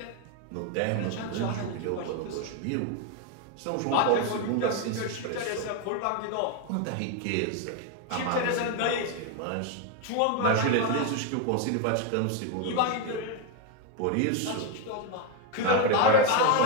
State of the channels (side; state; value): both; different; correlation 0.01